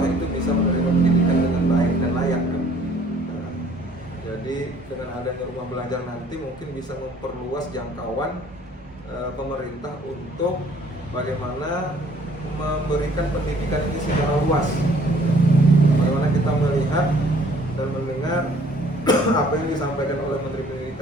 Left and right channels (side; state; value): both; normal; correlation 0.57